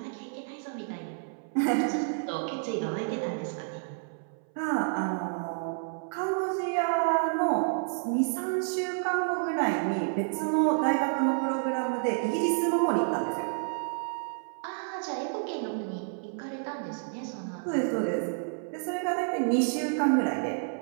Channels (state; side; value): silent; left; 58 dB below the other